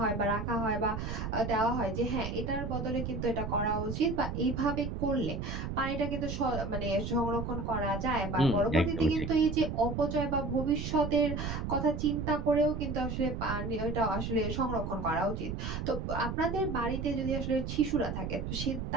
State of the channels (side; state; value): right; noise; rumble, 4 dB below the sound